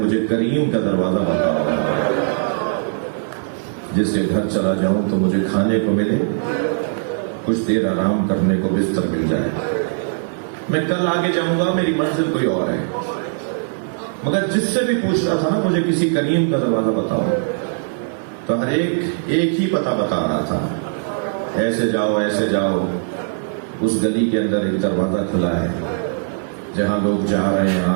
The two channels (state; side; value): silent; left; digital silence